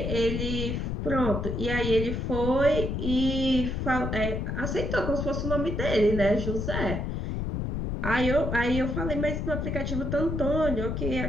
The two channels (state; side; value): noise; left; rumble, 2 dB below the sound